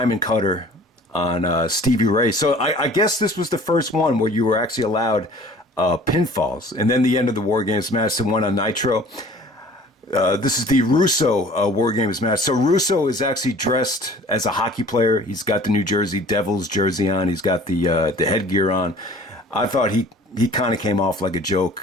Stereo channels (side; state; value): both; normal; correlation 0.48